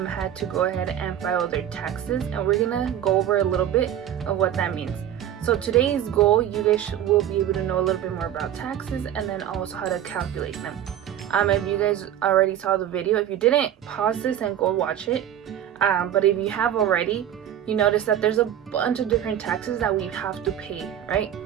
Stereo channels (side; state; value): left; quieter; 10.7 dB